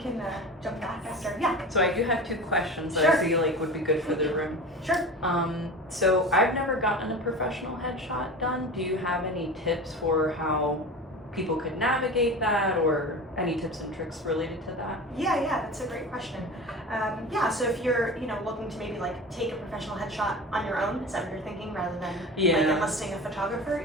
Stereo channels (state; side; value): normal; both; correlation 0.32